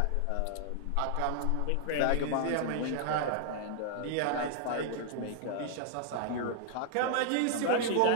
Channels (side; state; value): both; different; correlation -0.01